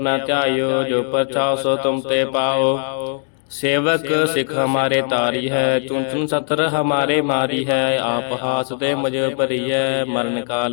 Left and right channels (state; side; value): silent; right; digital silence